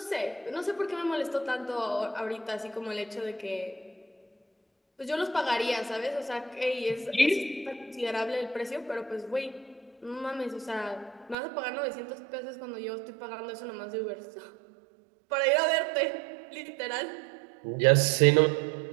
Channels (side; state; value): left; drops out; at 11.4 s